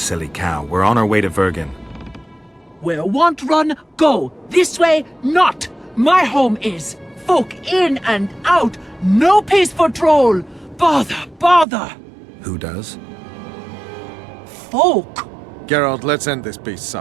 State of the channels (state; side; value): drops out; left; at 11.7 s